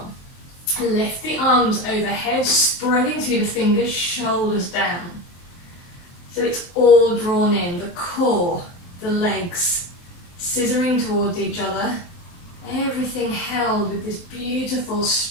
Lift the arms overhead, spreading through the fingers, shoulders down. So it's all drawn in, the core, the legs, scissoring towards each other. Everything held with this beautiful,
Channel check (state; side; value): late; right; 23 ms